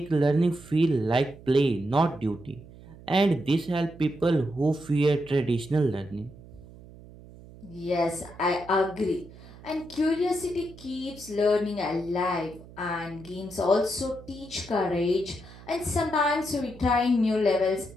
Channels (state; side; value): noise; right; hum, 19 dB below the sound